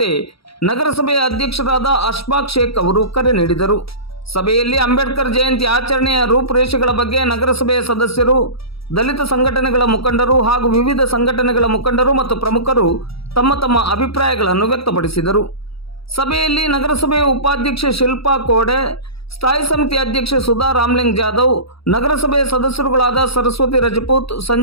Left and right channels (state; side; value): late; right; 0.76 ms